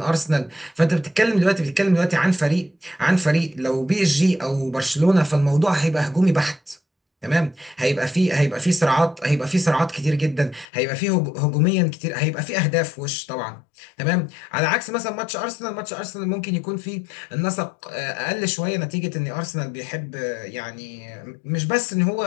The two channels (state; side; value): drops out; right; at 10.7 s